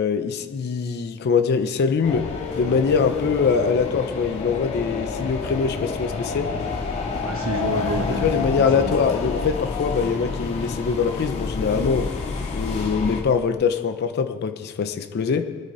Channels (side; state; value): right; quieter; 4.9 dB